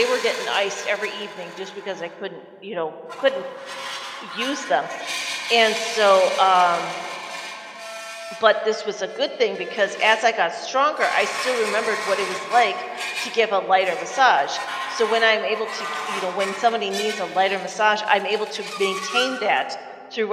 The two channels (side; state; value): both; identical; correlation 1.00